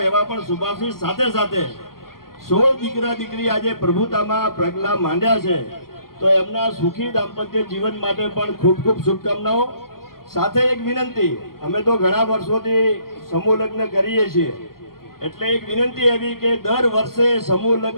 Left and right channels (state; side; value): late; right; 0.92 ms